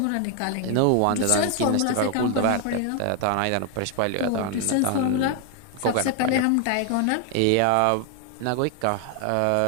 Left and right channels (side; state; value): both; different; correlation 0.01